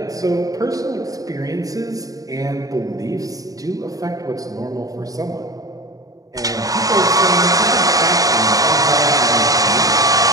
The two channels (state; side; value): late; left; 0.17 ms